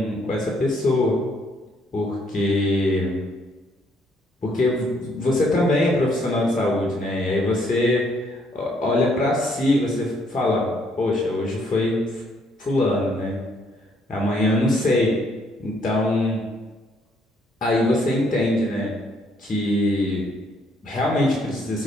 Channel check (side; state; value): both; normal; correlation 0.68